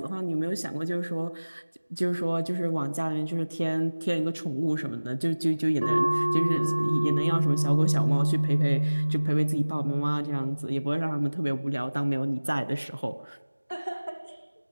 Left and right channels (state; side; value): inverted; both; correlation -1.00